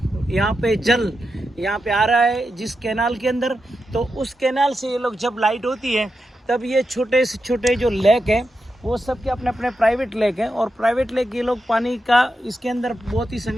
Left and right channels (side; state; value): both; normal; correlation 0.88